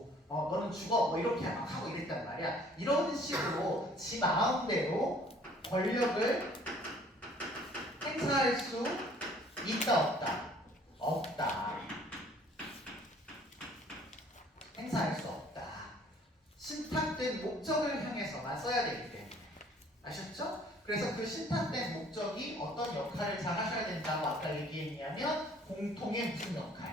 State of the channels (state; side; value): normal; both; correlation 0.56